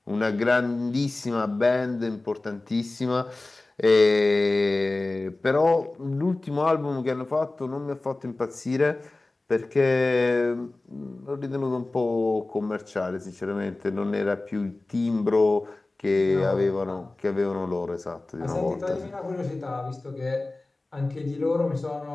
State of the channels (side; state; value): right; quieter; 3.0 dB